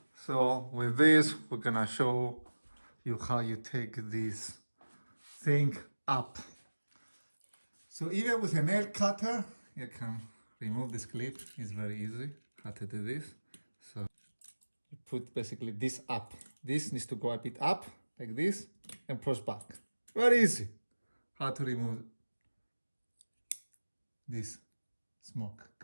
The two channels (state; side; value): inverted; both; correlation -1.00